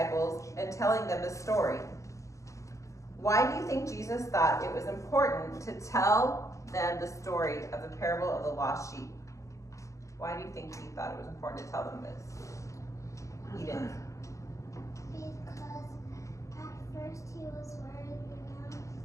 and telling them the story. Why do you think Jesus thought it was important to tell them the story of the parable of the lost sheep? Why do you think he thought it was important to tell them this? Eden. Because at first he was worried,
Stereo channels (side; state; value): right; late; 0.16 ms